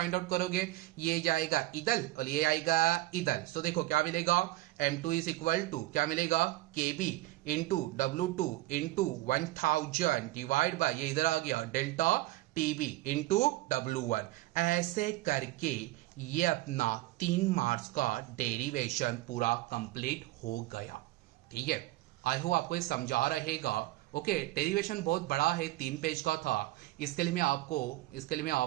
आउट करोगे, ये जाएगा इधर और ये आएगा इधर। तो देखो क्या मिलेगा, M2 इज इक्वल टू क्या मिलेगा, KB into W2 into 1000 divide by ये इधर आ गया डेल्टा TB इंटू W1। ऐसे करके ये अपना 3 मार्क्स का डेरिवेशन पूरा कंप्लीट हो गया, ठीक है। आई होप आपको ये समझा रहेगा। ओके, डेरिवेशन बहुत बड़ा है, 3 पेज का था। इसके लिए मैं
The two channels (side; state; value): left; quieter; 18.0 dB